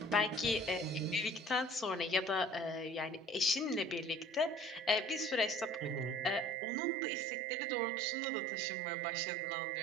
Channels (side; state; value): left; drops out; at 6.6 s